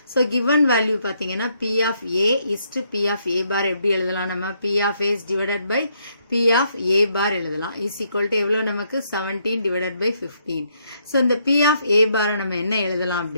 ஸோ given value பார்த்தீங்கன்னா P of A is to P of A bar எப்படி எழுதலாம், நம்ம P of A is divided by P of A bar எழுதலாம், is equal to எவ்வளோ நமக்கு 17 divided by 15. ஸோ இந்த P of A bar நம்ம என்ன எழுதலாம்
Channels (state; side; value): inverted; both; correlation -0.73